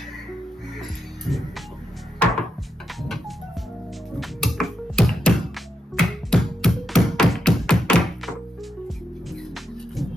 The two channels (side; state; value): both; normal; correlation 0.84